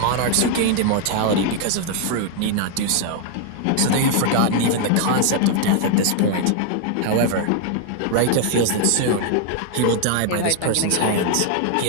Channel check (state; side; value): different; both; correlation 0.00